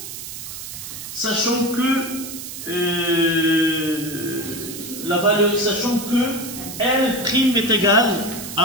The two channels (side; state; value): right; noise; hiss, 10 dB below the sound